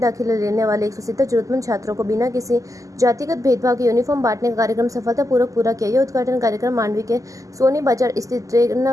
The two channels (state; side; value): late; left; 0.16 ms